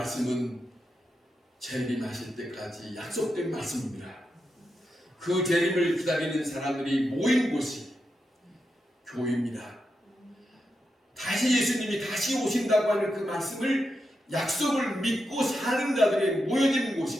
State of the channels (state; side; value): normal; both; correlation 0.87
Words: 재림하실 때까지 약속된 말씀입니다. 그 재림을 기다리는 사람들이 모인 곳이 교회입니다. 다시 예수님이 다시 오신다고 하는 그 말씀을 약속을 믿고 사는 자들이 모여지는